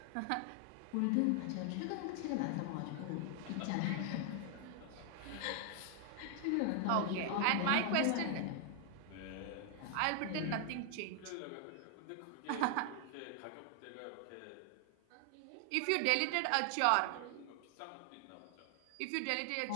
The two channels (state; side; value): different; both; correlation 0.00